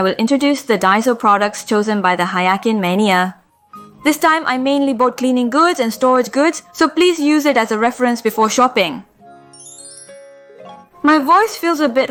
will introduce the Daiso products chosen by the Hayakin Mania. This time, I mainly bought cleaning goods and storage goods, so please use it as a reference before shopping. My voice feels a bit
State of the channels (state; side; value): identical; both; correlation 1.00